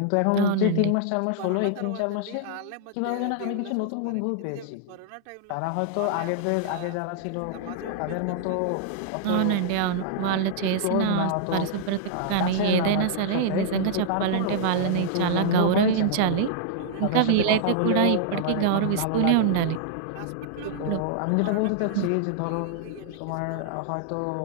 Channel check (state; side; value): different; both; correlation -0.01